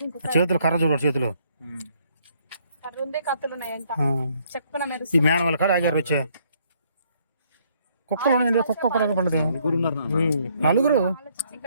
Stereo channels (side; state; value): both; inverted; correlation -0.67